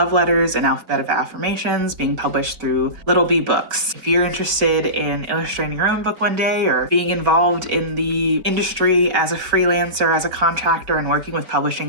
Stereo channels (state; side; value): late; left; 4.2 ms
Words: Letters, and Alphabet of Affirmations, being published through Little Bee Books. If you're interested in illustrating your own book one day or being involved in the industry as a freelancer, as a contractor, and working with publishing